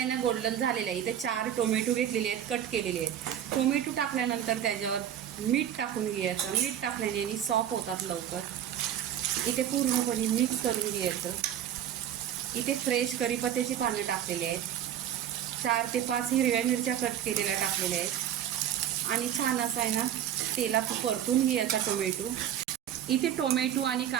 ना गोल्डन झालेला आहे. इथे 4 टोमॅटो घेतलेले आहेत, कट केलेले आहेत. टोमॅटो टाकल्यानंतर त्याच्यावर मीठ टाकून घ्यायचं. मीठ टाकल्याने आणि सॉफ्ट होतात लवकर. इथे पूर्णपणे मिक्स करून घ्यायचं. इथे फ्रेश कढीपत्त्याची पानं टाकलेली आहेत. 4 ते 5 हिरव्या मिरच्या कट केलेल्या टाकलेल्या आहेत आणि छान असं आहे ना तेलात परतून घ्यायचा टोमॅटो. इथे टोमॅटो आणि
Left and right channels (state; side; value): quieter; left; 10.3 dB